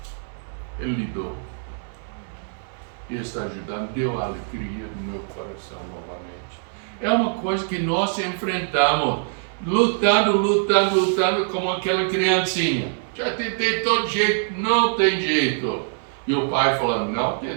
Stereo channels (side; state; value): left; silent; 63 dB below the other